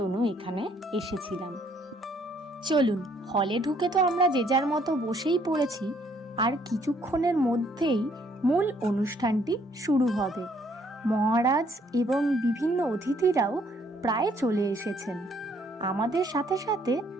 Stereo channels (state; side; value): normal; both; correlation 0.66